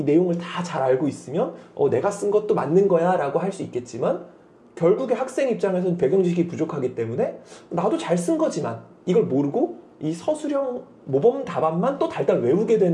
내용을 다 잘 알고 있으면 내가 쓴 것도 맞는 거야 라고 할 수 있겠지만 결국에 학생 입장에서는 배경 지식이 부족하기 때문에 나도 잘 쓴 거지만 이걸 모르고 이 서술형 모범 답안만 또 달달 외우게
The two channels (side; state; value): both; identical; correlation 1.00